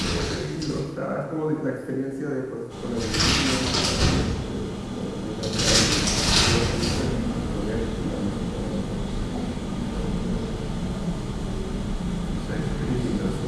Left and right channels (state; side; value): identical; both; correlation 1.00